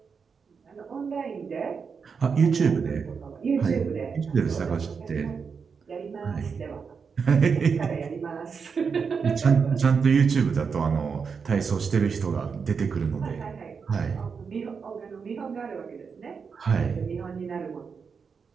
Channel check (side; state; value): left; quieter; 5.8 dB